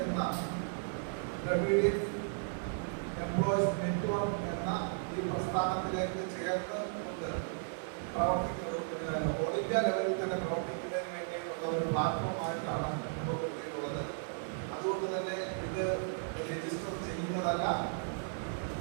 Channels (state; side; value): silent; left; digital silence